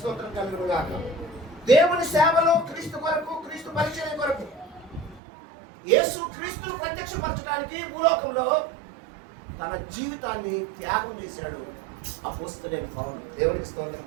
కలుగును గాక. దేవుని సేవలో క్రీస్తు కొరకు, క్రీస్తు పరిచయం కొరకు, యేసు క్రీస్తును ప్రత్యక్షపరచడానికి భూలోకంలో తన జీవితాన్ని త్యాగం చేశాడు అపోస్తలుడైన పౌలు. దేవునికి స్తోత్రం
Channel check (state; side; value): drops out; left; at 5.2 s